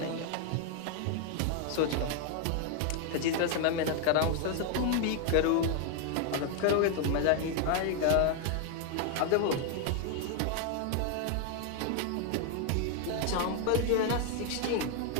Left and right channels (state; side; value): different; both; correlation 0.00